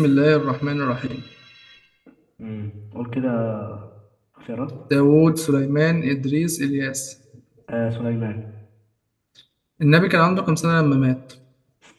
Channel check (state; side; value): identical; both; correlation 1.00